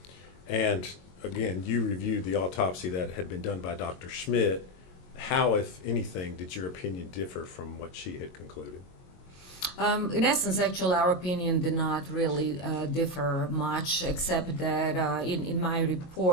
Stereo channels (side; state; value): right; late; 22 ms